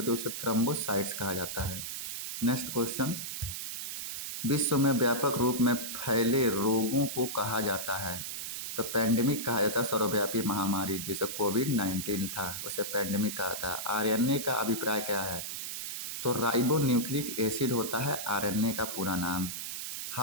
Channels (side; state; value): right; noise; hiss, 5 dB below the sound